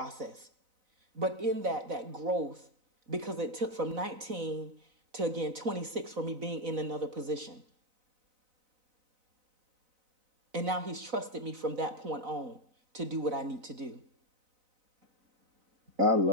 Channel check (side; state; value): left; late; 4.0 ms